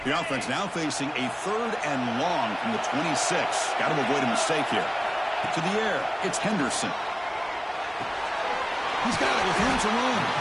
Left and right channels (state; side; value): identical; both; correlation 1.00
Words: The offense now facing a 3rd and long from the 26. Got to avoid a mistake here. To the air, it's Henderson. He's got it with him to run.